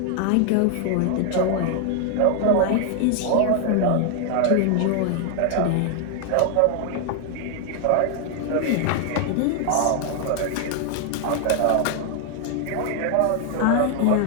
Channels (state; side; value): different; both; correlation 0.00